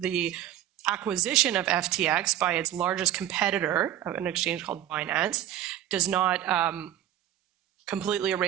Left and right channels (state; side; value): quieter; left; 12.1 dB